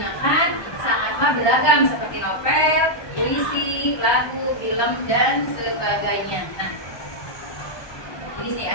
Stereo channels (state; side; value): late; right; 1.2 ms